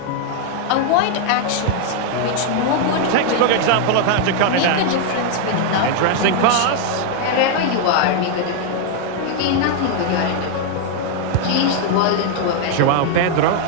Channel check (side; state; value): both; different; correlation 0.00